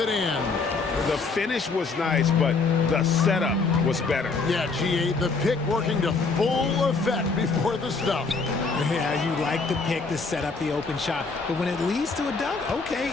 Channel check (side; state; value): right; quieter; 4.3 dB